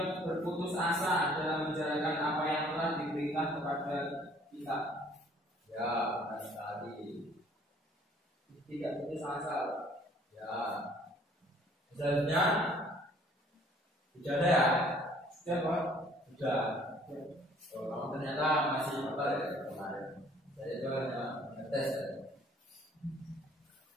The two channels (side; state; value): both; normal; correlation 0.58